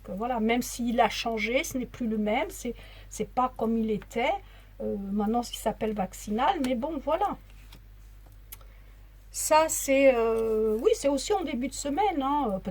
voilà, même s'il a changé, ce n'est plus le même, c'est pas comme il était. Maintenant, il s'appelle vaccinal, mais bon, voilà. Ça, c'est oui, c'est aussi en début de semaine, hein,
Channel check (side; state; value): both; identical; correlation 1.00